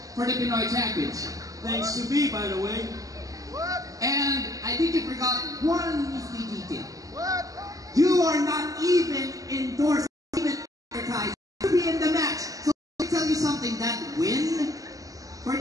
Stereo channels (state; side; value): late; left; 0.17 ms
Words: for the Pinoy Championship. Thanks to me, by the way. And I think you forgot one nifty detail. You are not even endorsed, even advertised to be in the match. So let me tell you something, that win for